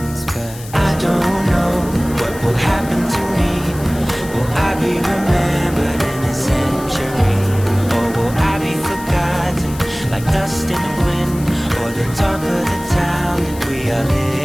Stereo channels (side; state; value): left; noise; hiss, 16 dB below the sound